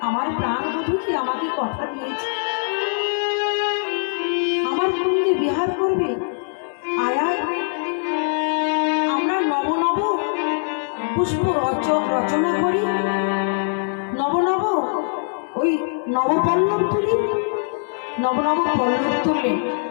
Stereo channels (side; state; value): right; silent; digital silence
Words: আমার প্রাণ বধূ কি আমাকে কথা দিয়েছে আমার কুঞ্জে বিহার করবে, আয়া আমরা নব নব পুষ্প রচনা করি, নব নব ওই নবপল্লব তুলি, নব নব পল্লব তুললেন,